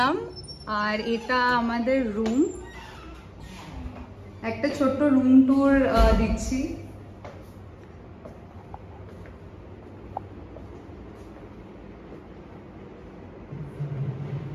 আর এটা আমাদের রুম। একটা ছোট্ট রুম ট্যুর দিচ্ছি।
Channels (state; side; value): identical; both; correlation 1.00